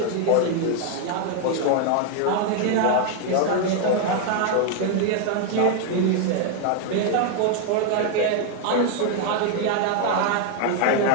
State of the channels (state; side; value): different; both; correlation 0.00